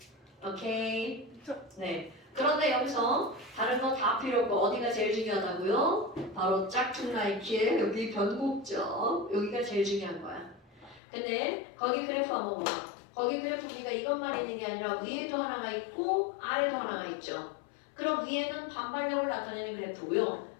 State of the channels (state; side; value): drops out; right; at 11.0 s